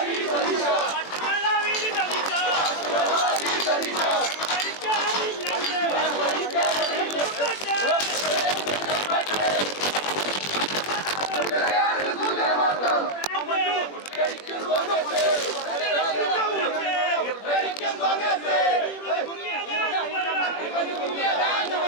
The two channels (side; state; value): right; late; 21 ms